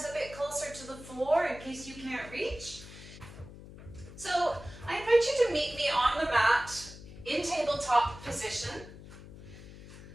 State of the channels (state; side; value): noise; left; hum, 16 dB below the sound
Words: a bit closer to the floor in case you can't reach. So I invite you to meet me on the mat in tabletop position.